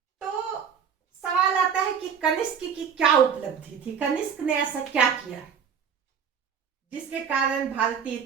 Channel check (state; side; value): quieter; left; 7.2 dB